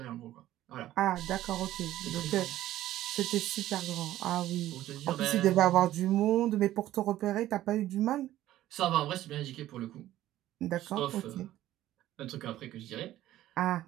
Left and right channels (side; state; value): left; quieter; 14.0 dB